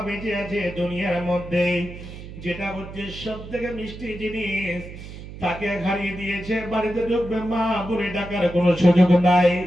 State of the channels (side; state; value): right; noise; hum, 13 dB below the sound